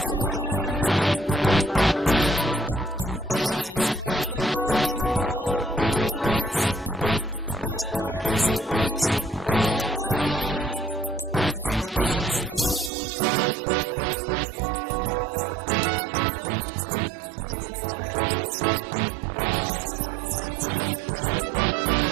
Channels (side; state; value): left; drops out; at 12.9 s